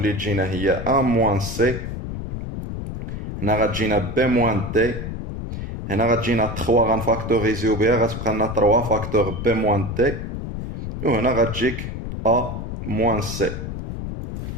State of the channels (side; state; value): left; noise; rumble, 6 dB below the sound